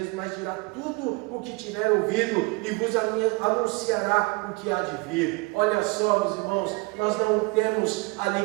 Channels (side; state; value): left; quieter; 27.1 dB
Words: mas dirá tudo o que tiver ouvido e vos anunciará o que há de vir. Olha só, meus irmãos, nós não temos